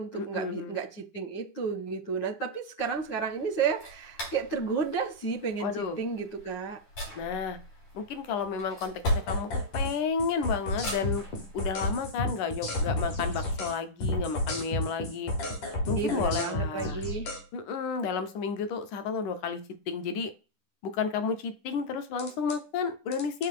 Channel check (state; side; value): late; right; 10 ms